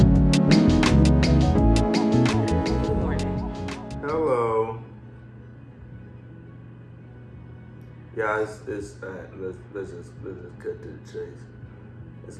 Hello. Yeah, let's just cut to the chase. It's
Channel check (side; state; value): both; identical; correlation 1.00